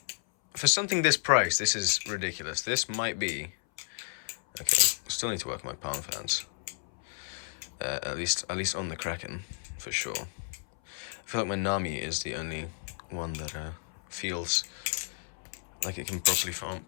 something this price, this is ridiculous. This might be okay. Still need to work on my palm fans. At least on the Kraken, for sure. I feel like my Nami is the only one that feels like it can properly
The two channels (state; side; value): silent; right; 57 dB below the other